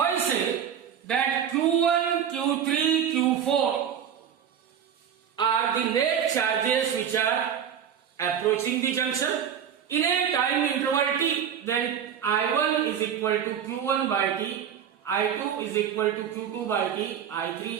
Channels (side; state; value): left; quieter; 8.5 dB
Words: say that Q1, Q3, Q4 are the net charges which are approaching the junction in a time interval t, then I1 is equal to Q1 by t, I2 is equal to Q2 by t,